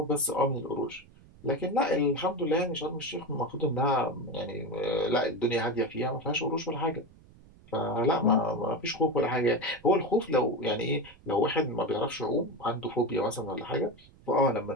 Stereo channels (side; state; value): right; noise; rumble, 24 dB below the sound